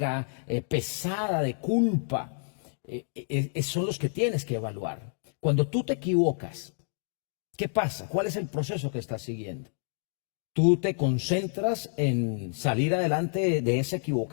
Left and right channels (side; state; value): right; silent; digital silence